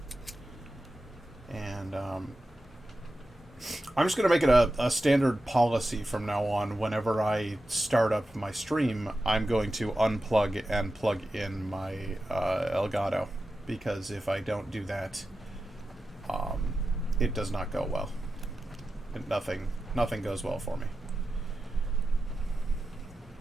And I'm just going to make it a standard policy from now on. Whenever I start up my stream, I'm going to unplug and plug in my Elgato. Because if I don't do that, it does not go well. Nothing goes well for me.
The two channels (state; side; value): normal; both; correlation 0.92